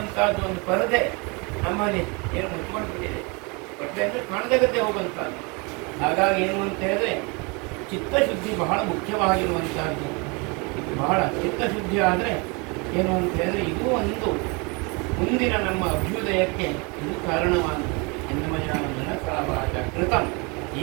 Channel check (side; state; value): left; quieter; 30.0 dB